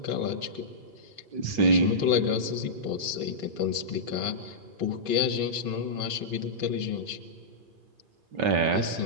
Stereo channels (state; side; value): late; left; 2.4 ms